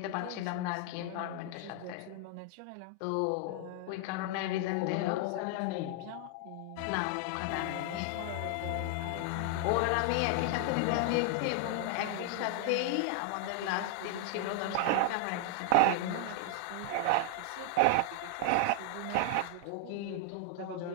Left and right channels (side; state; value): both; different; correlation 0.00